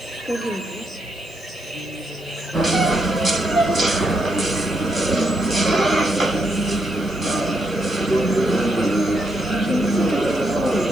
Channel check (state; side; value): noise; left; hiss, 25 dB below the sound